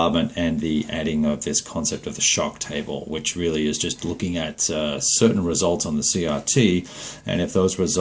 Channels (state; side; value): identical; both; correlation 1.00